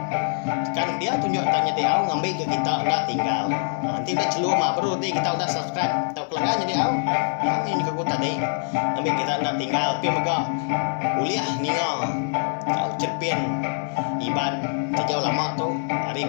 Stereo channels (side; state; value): right; silent; digital silence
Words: kan dia tunjuk tanya dia awak ngambil ke kita udah tinggal nanti udah celur mah baru nanti kita udah subscribe tahu kelanggan jadi awak ini ke aku tadi ngambil kita udah tinggal pemega uliah ninga tahu cerpin iban sejauh lama tu hari